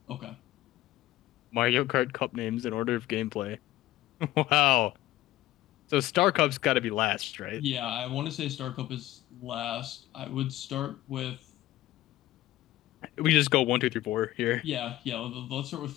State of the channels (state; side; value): quieter; right; 15.7 dB